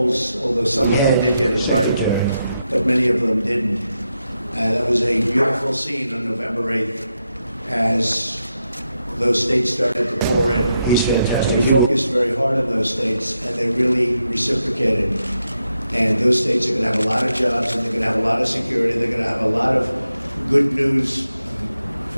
although some of them did get it right, but many of them didn't. That was a beautiful scene on November 8th as those states started to pour in. He's fantastic. We focused very hard on those states, and they really reciprocated. And those states are going to have a lot of jobs, and they're going to have a lot of security. They're going to have a lot of good news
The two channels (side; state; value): both; inverted; correlation -0.85